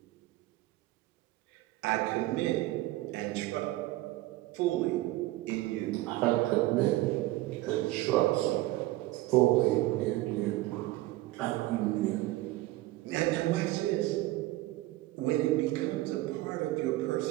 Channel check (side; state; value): left; quieter; 17.8 dB